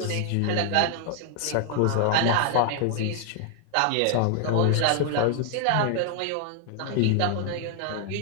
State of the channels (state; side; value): different; both; correlation 0.00